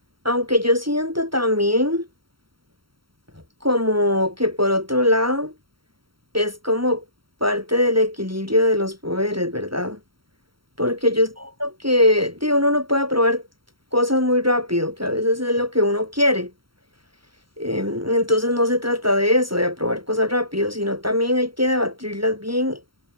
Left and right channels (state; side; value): late; left; 0.74 ms